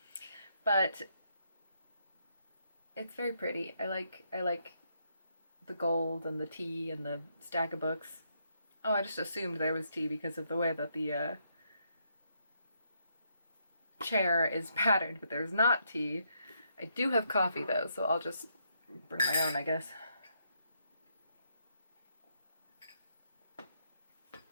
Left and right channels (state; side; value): inverted; both; correlation -0.76